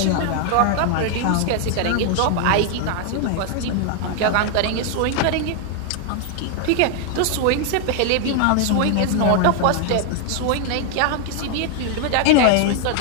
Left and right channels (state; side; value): different; both; correlation 0.00